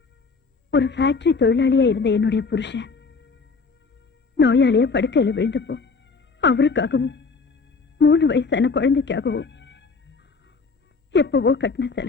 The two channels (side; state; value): right; quieter; 4.6 dB